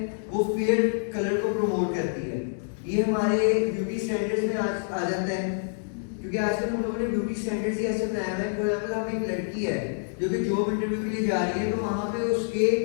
वो फेयर कलर को प्रमोट करती है। ये हमारे ब्यूटी स्टैंडर्ड्स में आ जाता है, क्योंकि आजकल हम लोगों ने ब्यूटी स्टैंडर्ड्स ही ऐसे बनाया है। फॉर एग्जाम्पल हम एक लड़की है जो कि जॉब इंटरव्यू के लिए जा रही है, तो वहाँ पे उसके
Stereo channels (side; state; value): right; silent; digital silence